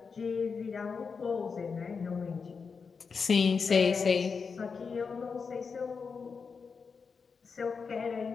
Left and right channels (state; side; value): quieter; right; 5.4 dB